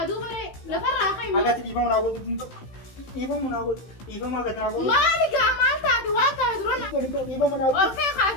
baree lafarraa ka'i. Agatti dhiifama naa godhu. Dhiifama naa godhu. Dhiifama agatti naa godhu. Maal gaa maal taate waan taate dura na. Dhiifama naa godhu. Ol ka'i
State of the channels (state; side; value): late; right; 16 ms